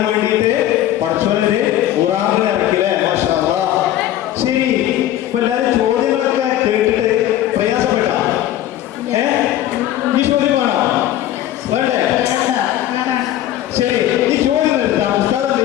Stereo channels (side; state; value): right; quieter; 12.8 dB